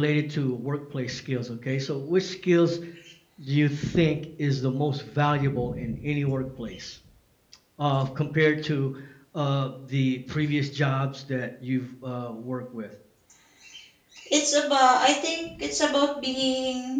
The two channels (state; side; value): identical; both; correlation 1.00